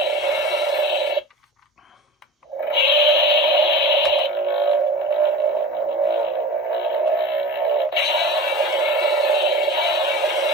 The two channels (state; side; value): normal; both; correlation 0.33